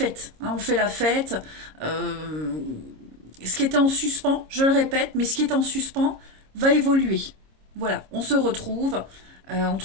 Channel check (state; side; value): late; left; 26 ms